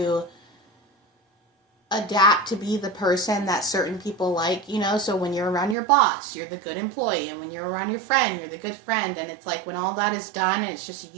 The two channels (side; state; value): left; drops out; at 5.8 s